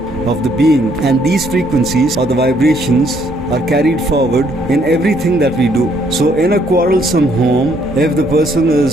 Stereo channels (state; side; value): noise; left; hum, 17 dB below the sound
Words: of the being, and these frequencies or the vibrations are carried forward in everything that we do. So in a quarrelsome home, if the person